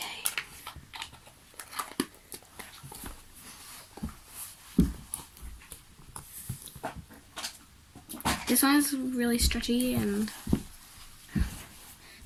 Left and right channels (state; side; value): identical; both; correlation 1.00